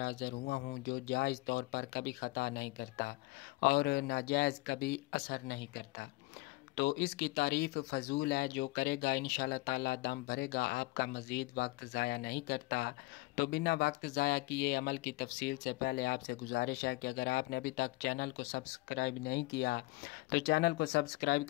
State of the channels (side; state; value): right; quieter; 21.7 dB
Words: हाजिर हुआ हूं जो जायज़ तौर पर कभी ख़ता नहीं करता और नाजायज़ कभी असर नहीं करता। तो इसकी तारीफ़ फ़जूल है, जो करेगा इंशाअल्लाह ताला दम भरेगा, आपका मज़ीद वक्त ज़ाया नहीं करता। तो बिना वक्त ज़ाया किए अमल की तफसील से पहले आपसे गुजारिश है कि अगर आपने अभी तक चैनल को सब्सक्राइब नहीं किया तो चैनल को सब्सक्राइब